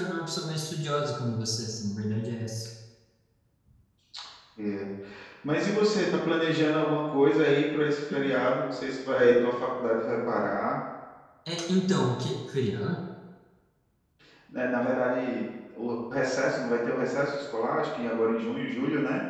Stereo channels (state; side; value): identical; both; correlation 1.00